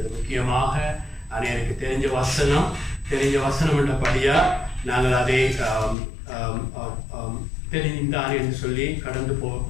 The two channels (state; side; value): drops out; right; at 6.0 s